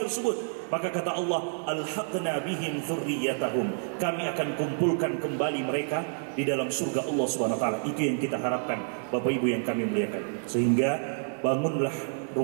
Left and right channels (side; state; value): left; silent; digital silence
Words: tersebut. Maka kata Allah, alhaqna bihim dzurriyyatahum, kami akan kumpulkan kembali mereka di dalam surga Allah Subhanahu wa taala. Itu yang kita harapkan Bapak Ibu yang kami muliakan. Sehingga bangunlah